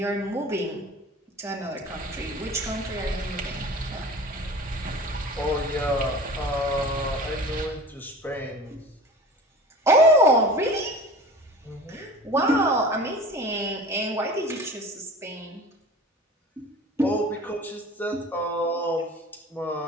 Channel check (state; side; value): normal; both; correlation 0.38